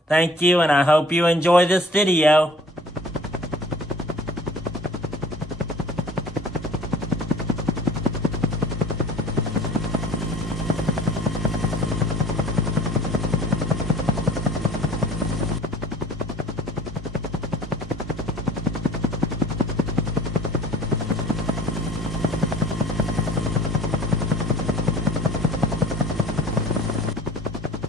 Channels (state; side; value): normal; both; correlation 0.49